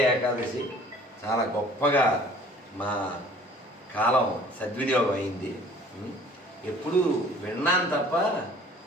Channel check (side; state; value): both; normal; correlation 0.52